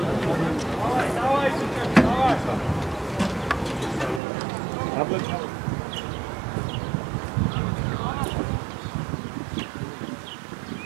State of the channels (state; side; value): drops out; left; at 4.2 s